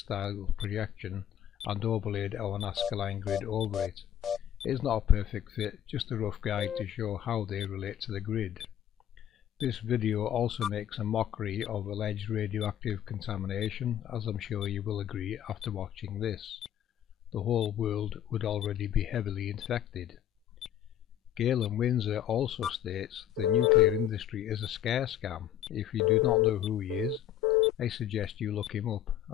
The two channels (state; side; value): quieter; right; 10.8 dB